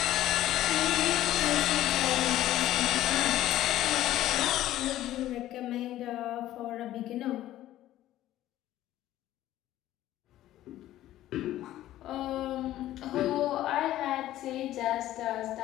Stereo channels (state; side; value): quieter; right; 14.0 dB